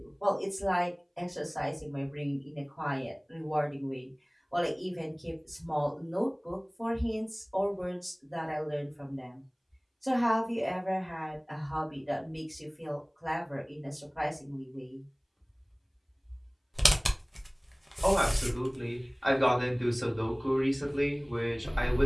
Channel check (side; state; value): both; identical; correlation 1.00